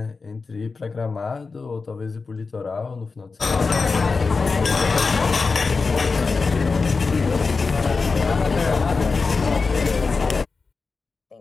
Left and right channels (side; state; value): right; quieter; 4.4 dB